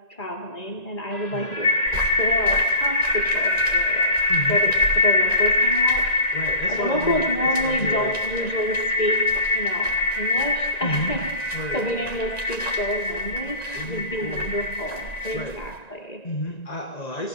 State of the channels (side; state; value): right; late; 1.9 ms